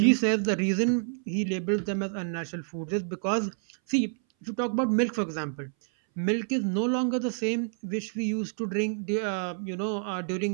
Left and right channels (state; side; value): silent; left; 59 dB below the other